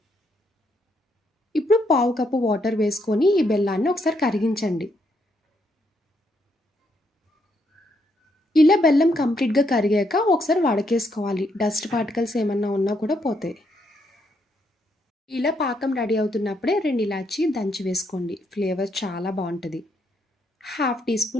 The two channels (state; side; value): normal; both; correlation 0.75